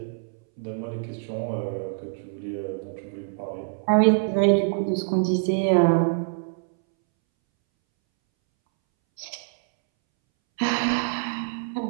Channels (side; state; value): left; silent; 62 dB below the other